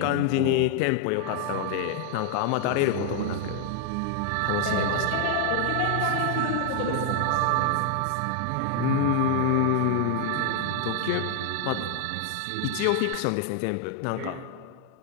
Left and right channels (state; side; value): different; both; correlation 0.00